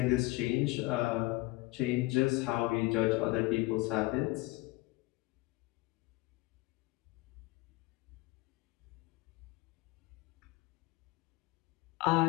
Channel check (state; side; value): quieter; right; 21.2 dB